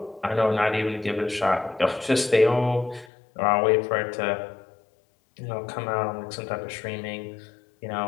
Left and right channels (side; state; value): right; drops out; at 3.1 s